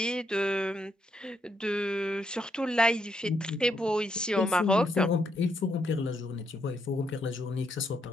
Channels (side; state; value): both; normal; correlation 0.77